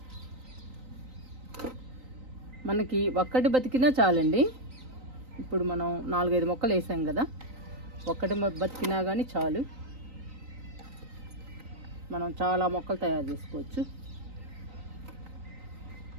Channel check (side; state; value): left; late; 3.9 ms